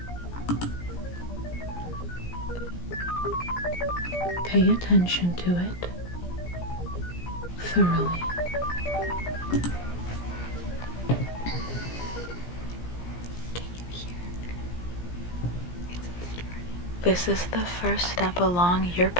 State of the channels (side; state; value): right; late; 17 ms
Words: pay attention to it thoroughly. Can you hear? It's starting. This is the first step along your